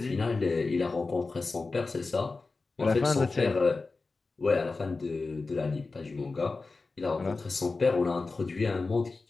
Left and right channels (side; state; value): right; quieter; 3.8 dB